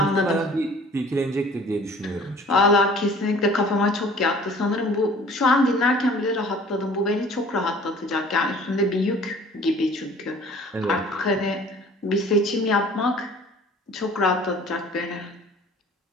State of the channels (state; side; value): normal; both; correlation 0.49